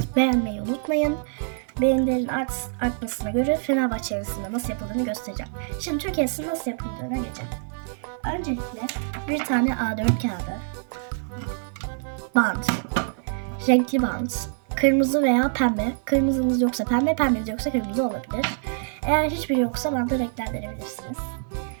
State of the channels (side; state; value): left; silent; 55 dB below the other